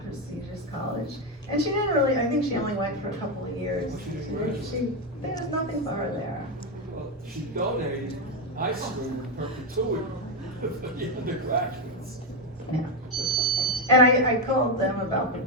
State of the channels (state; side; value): normal; both; correlation 0.07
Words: And she didn't really, I think she only went for a couple of years. There was nothing for her there. Well, she donated high school perpetuity for the undergraduates. Yeah. And I called them about the